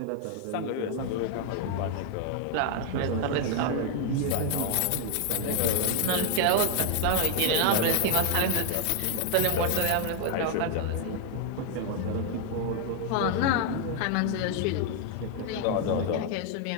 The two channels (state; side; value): different; both; correlation 0.00